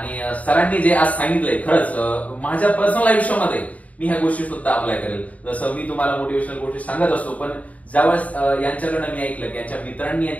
सरांनी जे आज सांगितलंय खरंच माझ्या पर्सनल आयुष्यामध्ये मी ह्या गोष्टी सुद्धा अप्लाय करेल. जसं मी तुम्हाला मोटिवेशनल गोष्टी सांगत असतो, पण ज्यावेळेस यांच्याकडनं मी ऐकलं की यांच्या मित्रांनी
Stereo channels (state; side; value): late; right; 0.070 ms